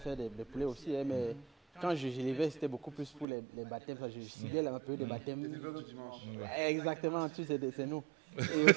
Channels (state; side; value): drops out; left; at 3.2 s